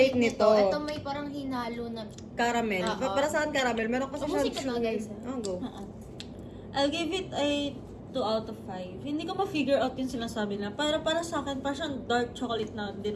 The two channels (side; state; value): both; identical; correlation 1.00